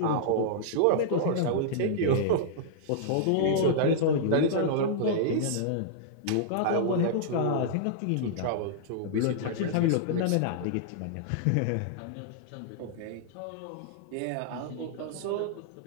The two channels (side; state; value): both; different; correlation -0.02